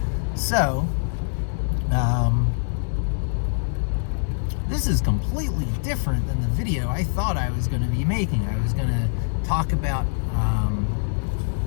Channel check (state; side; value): silent; right; 63 dB below the other